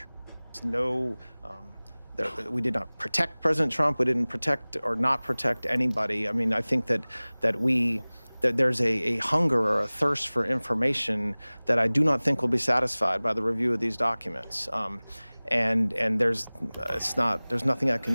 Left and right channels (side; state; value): both; inverted; correlation -1.00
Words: We did not protect President Trump. We didn't protect or not protect anybody. I mean, I think that there's a hunger or a thirst for information that I do not think will be satisfied by the review of these documents. And there's nothing I